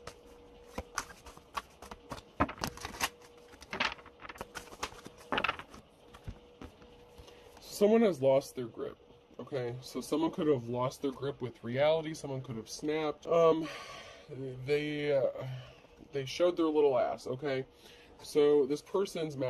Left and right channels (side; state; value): both; identical; correlation 1.00